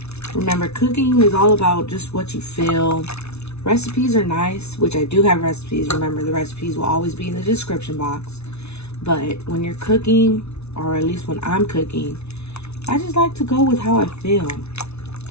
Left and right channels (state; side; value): late; right; 0.81 ms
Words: Remember, cooking is all about just what you feel. Recipes are nice, which I do have recipes. Remember, the recipes will always be in the description box. But when you're cooking, or at least when I'm cooking, I just like to go with how I feel.